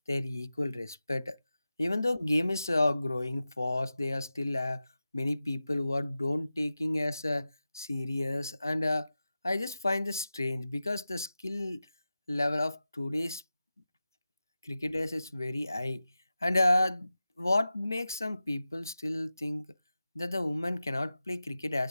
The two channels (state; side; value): inverted; both; correlation -0.94